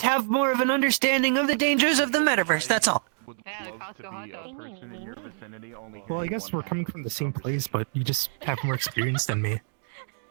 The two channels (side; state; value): left; silent; digital silence